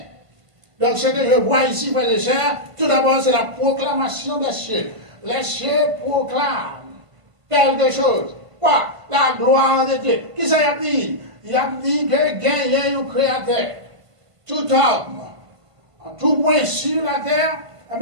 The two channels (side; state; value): left; late; 1.5 ms